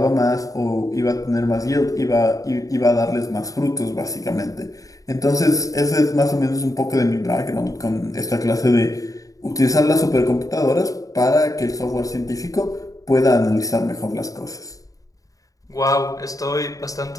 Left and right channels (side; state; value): right; late; 0.17 ms